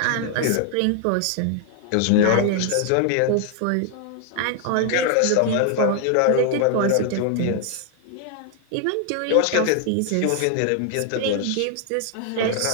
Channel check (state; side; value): different; both; correlation 0.00